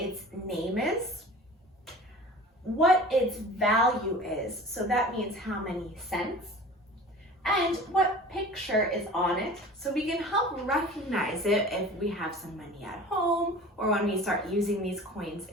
name is, what its value is, so that means how many cents, and what picture is on it, so we can help recognize it if we have some money at home or when we start using these coins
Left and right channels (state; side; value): normal; both; correlation 0.41